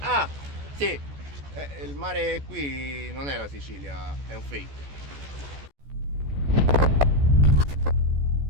Ah, sì! Il mare qui non è la Sicilia, è un fake.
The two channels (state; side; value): late; left; 14 ms